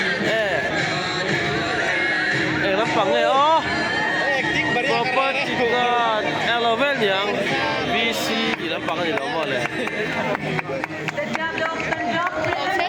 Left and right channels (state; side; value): identical; both; correlation 1.00